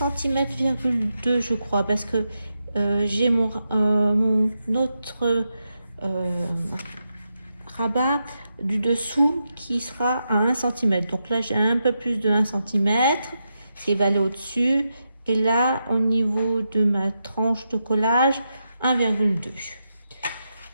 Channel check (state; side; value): inverted; both; correlation -0.86